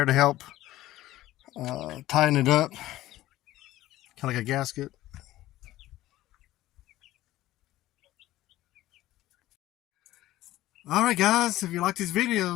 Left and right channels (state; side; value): quieter; right; 15.6 dB